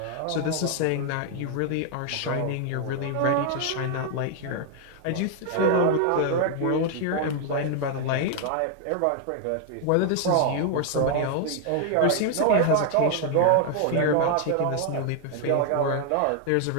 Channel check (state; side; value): different; both; correlation 0.00